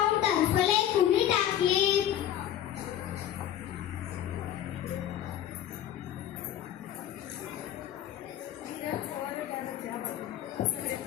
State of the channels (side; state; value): right; quieter; 11.2 dB